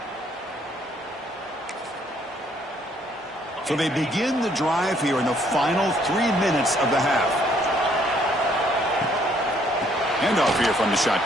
So they begin the drive here in the final 3 minutes of the half. Handoff here from the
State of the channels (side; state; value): both; normal; correlation 0.66